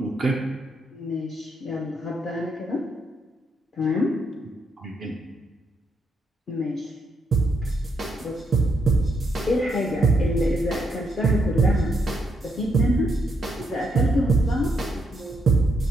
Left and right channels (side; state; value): both; normal; correlation 0.78